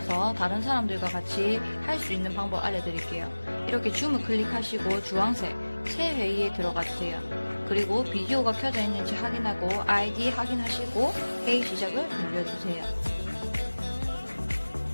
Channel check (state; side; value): inverted; both; correlation -1.00